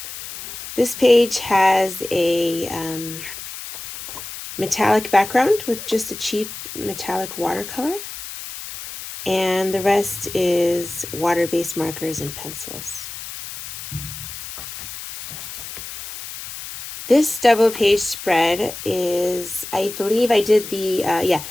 This page has a metallic background with just a cheap metallic watercolor, and the rest is water-based markers and pencils. This double page spread is, I believe I did the,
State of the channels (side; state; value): left; noise; hiss, 11 dB below the sound